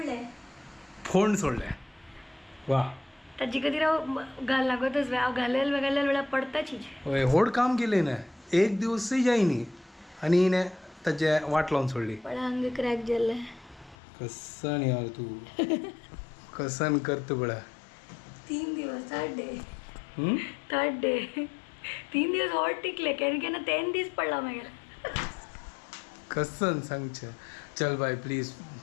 फोन सोडले वा ताजी कधी राव घाल लागतच हांव घालेल वेळा पडताची होय होड काम केले ना एक दिवसही जायनी आणि हिने ताचे वाट लावून सोडली पण हांगे क्रॅक जाल्ले कसन यार तू कसन करतो बळा 3 दिवस थर्ड डे 3 दिवस हॉट टिकले केन्ना 10 दीस पडला मागीर कसन सांगचे चल बाय प्लीज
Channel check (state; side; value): drops out; right; at 14.0 s